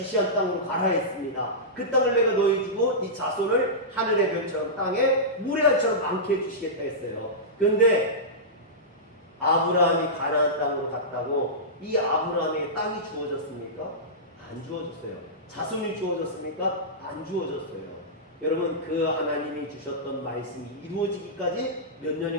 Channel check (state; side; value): normal; both; correlation -0.15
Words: 땅으로 가라 했습니다. 그 땅을 내가 너희 주고 네 자손을 하늘의 별처럼 땅에 물의 알처럼 많게 해주시겠다 했어요. 그런데 아브라함이 가나안 땅으로 갔다고 이 아브라함에게 땅이 주어졌습니까? 안 주어졌어요. 자손이 주어졌습니까? 안 주어졌어요. 여러분 그 하나님이 주셨던 말씀이 이루어지기까지 몇